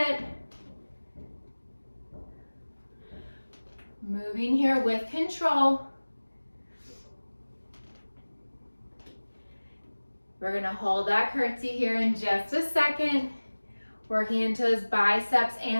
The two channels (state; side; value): inverted; both; correlation -1.00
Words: Moving here with control. We're gonna hold that curtsy here in just a second. Working into those biceps